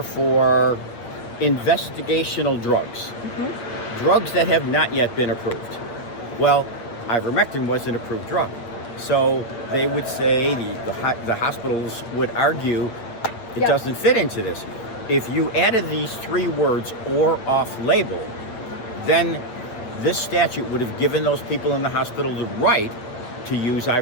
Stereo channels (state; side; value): late; right; 8.5 ms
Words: for investigational drugs, drugs that have not yet been approved. Well, ivermectin was an approved drug. So they would say, the hospitals would argue, it doesn't fit into this. If you added these three words, or off-label, then this statute would have given those people in the hospital the right to use